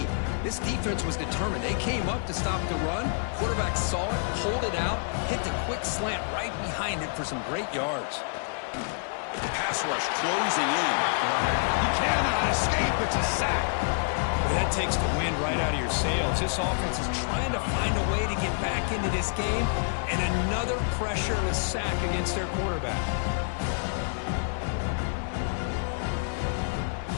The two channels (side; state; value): right; silent; digital silence